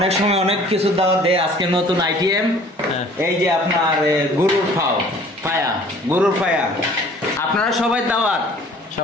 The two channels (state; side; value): normal; both; correlation 0.52